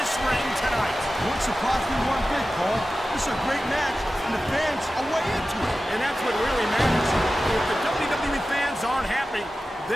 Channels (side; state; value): both; normal; correlation 0.94